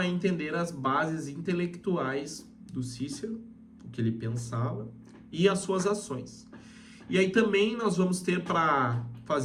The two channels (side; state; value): both; identical; correlation 1.00